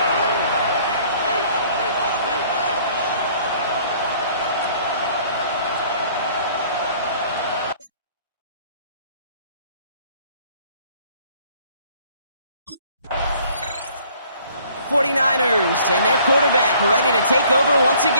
'49ers and their quarterback ready to take over once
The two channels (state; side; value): inverted; both; correlation -0.57